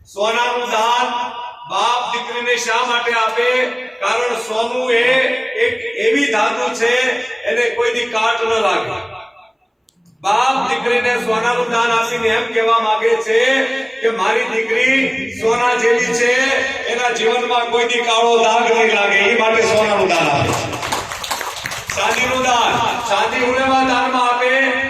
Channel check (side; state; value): both; identical; correlation 1.00